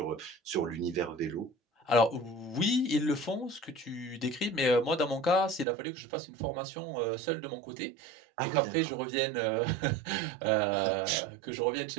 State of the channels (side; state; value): left; drops out; at 5.7 s